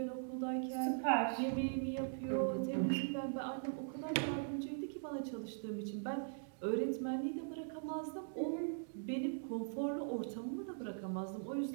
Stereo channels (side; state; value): left; silent; digital silence